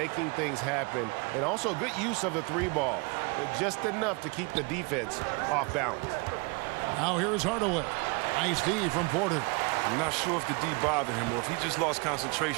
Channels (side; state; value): left; quieter; 30.1 dB